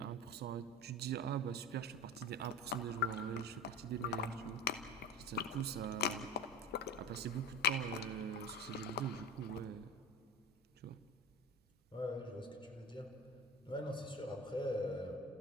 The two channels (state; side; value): normal; both; correlation 0.32